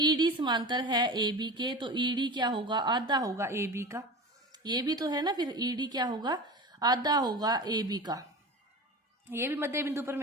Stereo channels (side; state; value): both; normal; correlation 0.31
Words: समांतर है ए बी के, तो ईडी क्या होगा, आधा होगा ए बी का। ये भी तो है ना, फिर ईडी क्या होगा, आधा होगा ए बी का। ये भी मध्य बिंदु